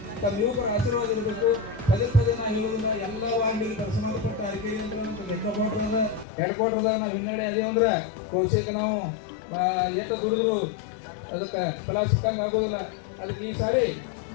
ತಮ್ಮ ಯುವಕರ ಆಶೀರ್ವಾದ ಇರಬೇಕು. ಪದೇ ನಾವು ಹೇಳೋದಿಲ್ಲ, ಎಲ್ಲ ವಾರ್ಡಿಗೆ ಸಂಬಂಧಪಟ್ಟ ಅರಿಕೆರೆ ಅಂತ ಲೆಕ್ಕಪಟ್ರದ ಹೆಡ್ಕ್ವಾರ್ಟರ್ದಾಗ ನಾವು ಹಿನ್ನಡೆ ಅದೇ ಅಂದ್ರೆ ಕೋಶಕ್ಕೆ ನಾವು ಏಕ ದುಡಿದ್ರು ಅದಕ್ಕೆ ಫಲ ಸಿಕ್ಕಂಗೆ ಆಗೋದಿಲ್ಲ. ಅದಕ್ಕೆ ಈ ಸಾರಿ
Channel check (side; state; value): right; drops out; at 6.2 s